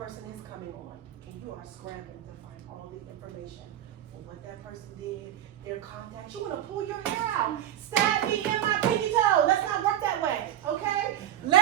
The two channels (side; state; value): left; quieter; 11.7 dB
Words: is coming on, and you are scrambling to find all the information for what that person did, their contacts. You want to pull your hair out, stab me in my pinky toe. Let's not work that way, okay?